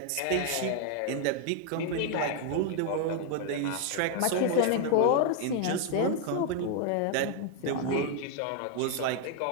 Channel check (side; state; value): both; different; correlation 0.00